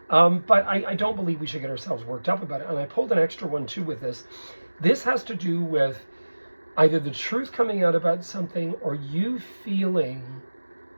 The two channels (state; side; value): inverted; both; correlation -1.00